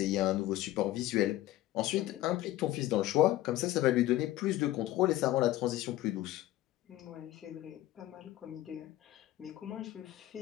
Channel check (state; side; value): quieter; right; 15.1 dB